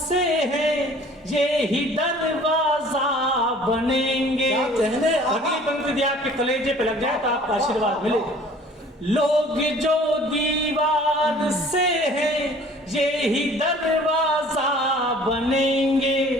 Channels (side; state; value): both; normal; correlation 0.51